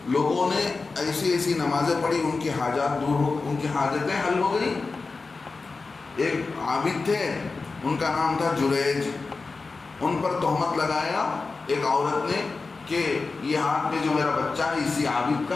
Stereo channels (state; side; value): quieter; right; 4.0 dB